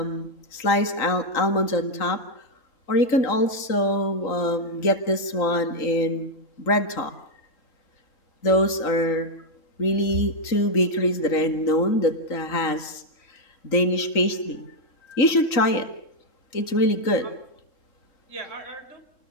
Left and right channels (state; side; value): late; right; 3.9 ms